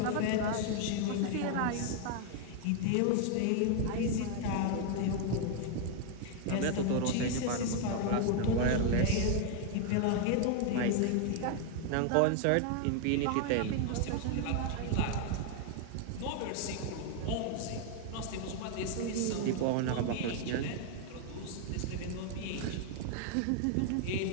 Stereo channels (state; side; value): different; both; correlation 0.00